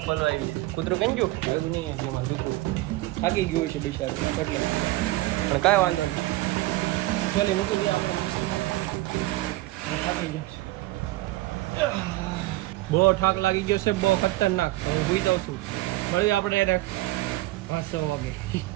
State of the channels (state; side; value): quieter; left; 18.3 dB